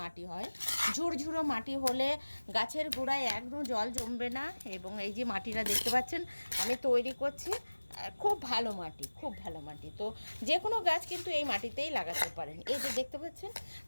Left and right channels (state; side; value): inverted; both; correlation -1.00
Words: মাটি হয়, ঝুরঝুরো মাটি হলে গাছের গোড়ায় একদম জল জমবে না। এবং এই যে মাটিটা দেখতে পাচ্ছেন আমি তৈরি করছি, খুব ভালো মাটি, খুব ভালো মাটি। তো যে কোনো গাছ কিন্তু এই মাটিতেই লাগাতে পারেন। এই যে দেখতে পাচ্ছেন,